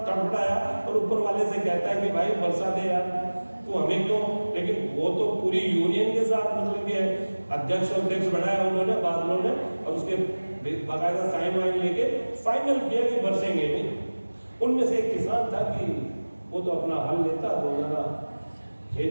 तड़फड़ाया और ऊपर वाले से कहता है कि भाई बरसा दे यार, तो हमें क्यों। लेकिन वो तो पूरी यूनियन के साथ मतलब कि अध्यक्ष बनाया उन्होंने, बादलों ने, और उसके बाकायदा साइन वाइन लेके फाइनल किया कि बरसेंगे नहीं। उनमें से एक किसान था कि वो तो अपना हल लेता, रोजाना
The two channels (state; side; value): inverted; both; correlation -1.00